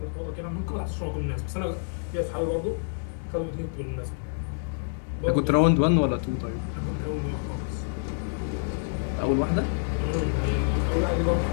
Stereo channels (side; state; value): right; silent; digital silence